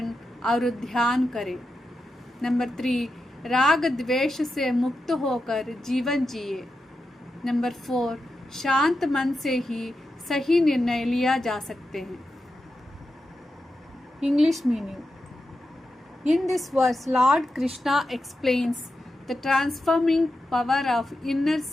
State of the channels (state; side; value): normal; both; correlation 0.89